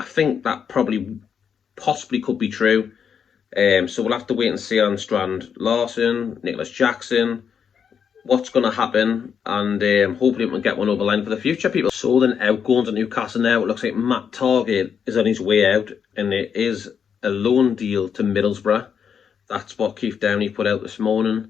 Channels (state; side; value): quieter; right; 7.3 dB